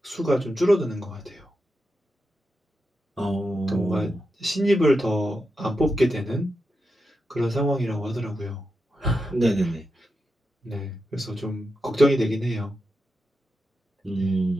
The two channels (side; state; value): both; normal; correlation 0.88